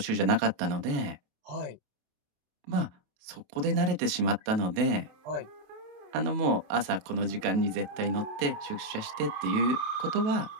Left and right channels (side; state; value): left; late; 28 ms